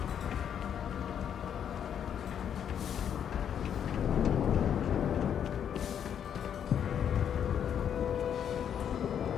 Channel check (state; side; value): quieter; right; 8.7 dB